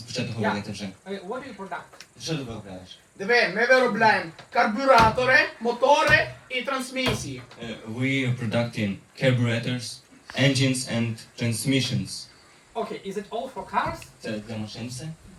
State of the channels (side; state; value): both; identical; correlation 1.00